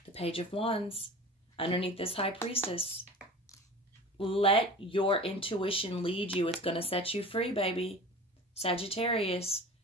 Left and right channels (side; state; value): both; normal; correlation 0.37